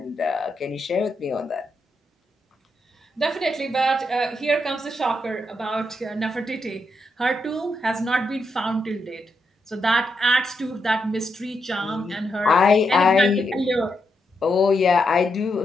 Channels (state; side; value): normal; both; correlation 0.82